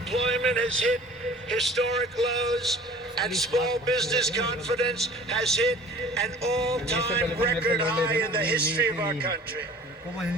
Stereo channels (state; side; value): normal; both; correlation 0.46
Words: has hit historic lows and small business confidence has hit an all-time record high in the history of our country.